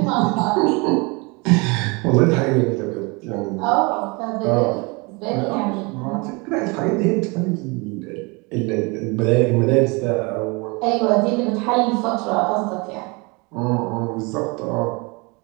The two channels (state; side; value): quieter; left; 28.4 dB